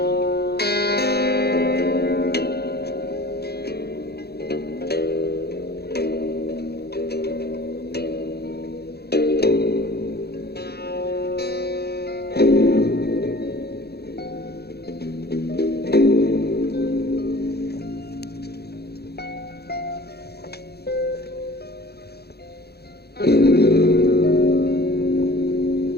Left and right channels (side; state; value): right; late; 0.47 ms